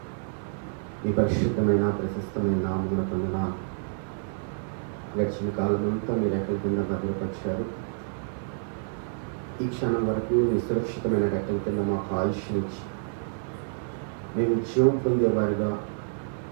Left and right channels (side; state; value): left; silent; 59 dB below the other